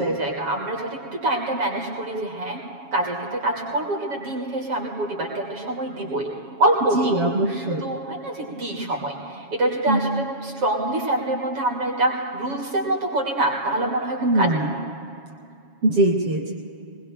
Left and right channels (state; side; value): late; left; 7.2 ms